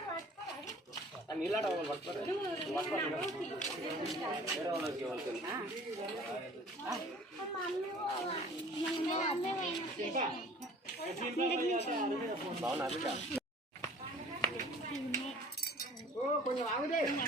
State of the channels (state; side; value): normal; both; correlation 0.49